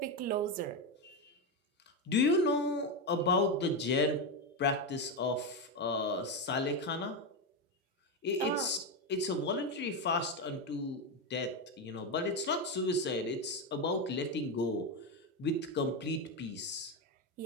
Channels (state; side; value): normal; both; correlation 0.10